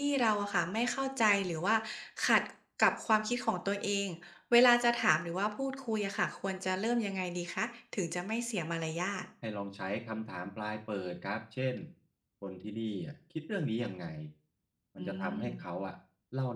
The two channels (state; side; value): identical; both; correlation 1.00